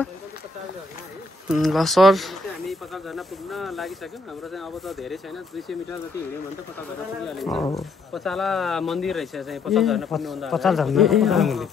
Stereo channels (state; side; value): quieter; right; 3.6 dB